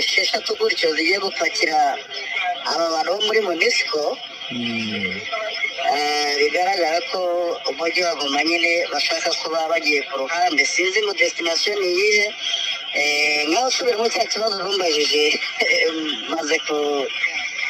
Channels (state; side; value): identical; both; correlation 1.00